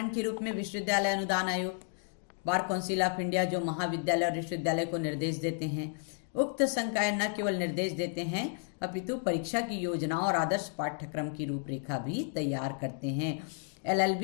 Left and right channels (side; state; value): right; silent; 56 dB below the other